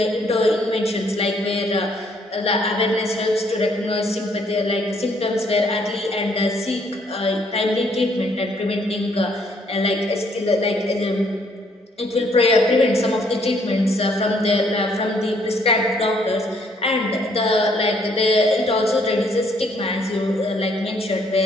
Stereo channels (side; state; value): both; normal; correlation 0.67